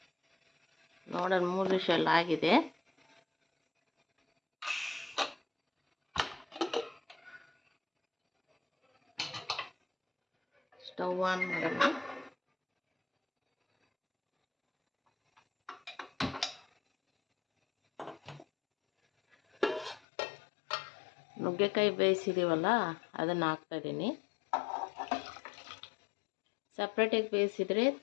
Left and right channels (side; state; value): right; drops out; at 20.0 s